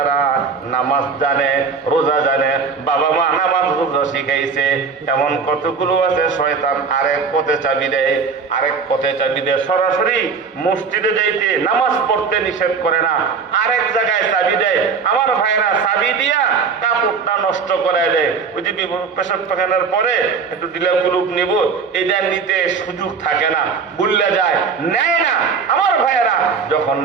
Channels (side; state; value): left; quieter; 5.4 dB